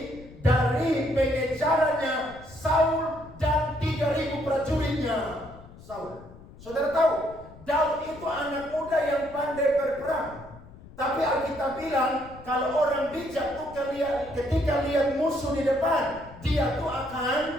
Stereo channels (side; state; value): left; noise; rumble, 19 dB below the sound